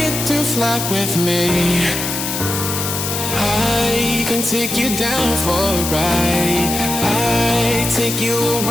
to fly with me. I can take you down for a ride. I take you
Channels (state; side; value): noise; left; hiss, 3 dB below the sound